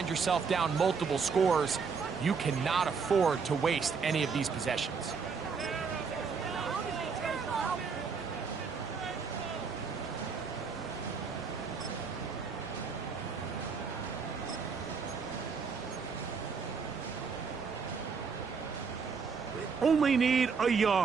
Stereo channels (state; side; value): quieter; left; 5.5 dB